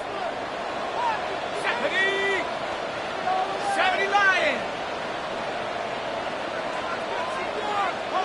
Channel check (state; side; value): identical; both; correlation 1.00